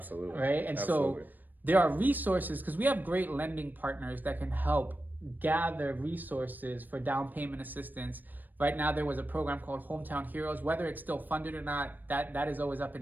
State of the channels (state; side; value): late; left; 0.088 ms